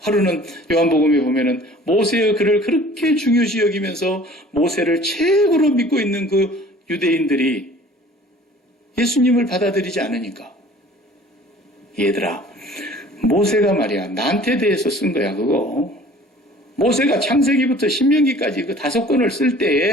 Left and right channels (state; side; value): normal; both; correlation 0.49